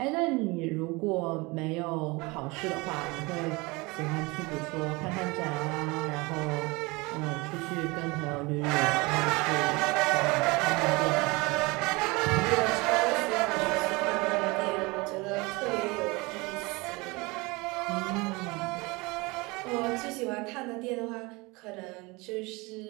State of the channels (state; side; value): quieter; left; 24.9 dB